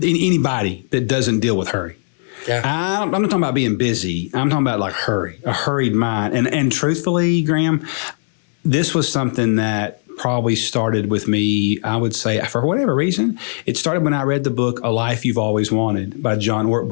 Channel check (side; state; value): right; silent; 65 dB below the other